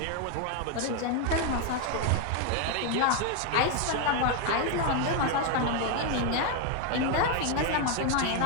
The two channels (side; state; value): both; different; correlation 0.01